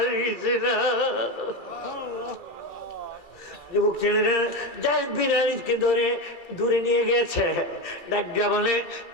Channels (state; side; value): late; right; 2.5 ms